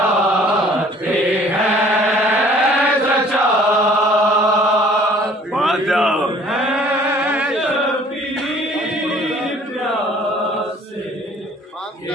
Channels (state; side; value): normal; both; correlation 0.54